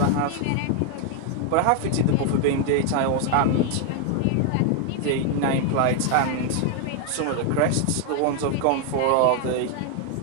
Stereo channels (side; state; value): both; different; correlation 0.00